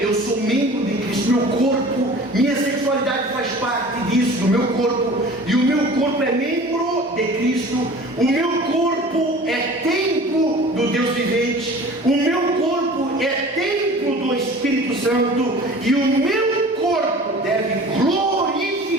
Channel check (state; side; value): normal; both; correlation 0.42